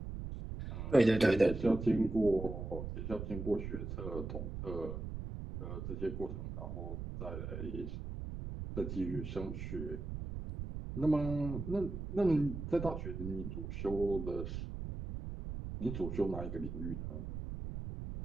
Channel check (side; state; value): right; noise; rumble, 6 dB below the sound